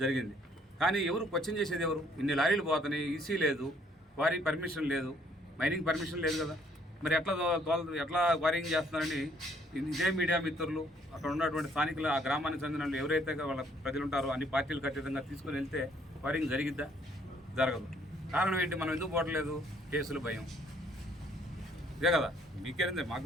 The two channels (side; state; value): both; normal; correlation 0.64